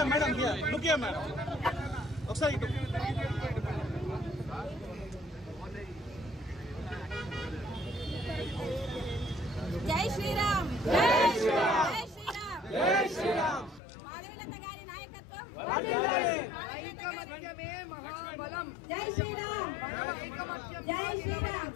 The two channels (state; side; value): drops out; right; at 13.8 s